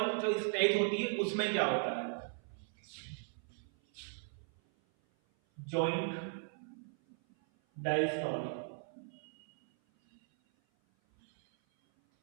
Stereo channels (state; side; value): silent; left; 53 dB below the other